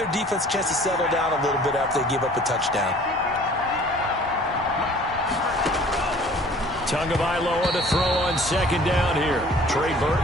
defense a chance to settle down a little bit after they give up a touchdown. Tagovailoa to throw on second down here. Trey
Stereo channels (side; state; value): both; normal; correlation 0.51